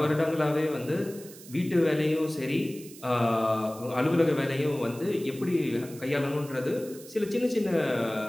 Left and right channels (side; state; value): right; noise; hiss, 18 dB below the sound